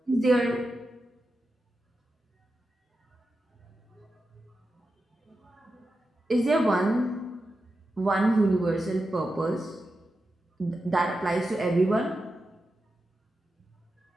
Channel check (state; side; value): normal; both; correlation 0.90